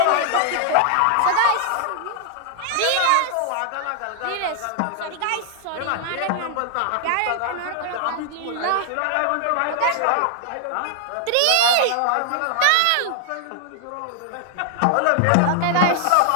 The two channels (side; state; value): both; different; correlation 0.00